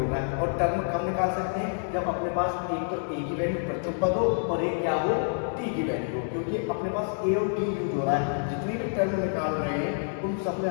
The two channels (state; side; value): silent; right; 59 dB below the other